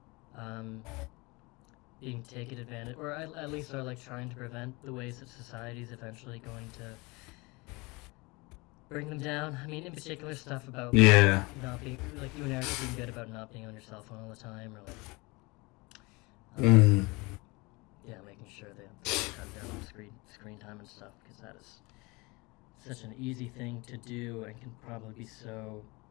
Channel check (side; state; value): right; quieter; 25.4 dB